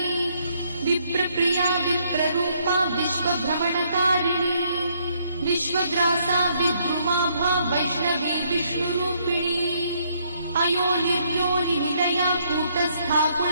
विप्रप्रिया विप्ररूपा विश्वभ्रमणकारिणी विश्वग्रासा विद्रुमाभा वैष्णवी विष्णुरूपिणी अयोनिर्योनिनिलया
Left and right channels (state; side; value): inverted; both; correlation -0.70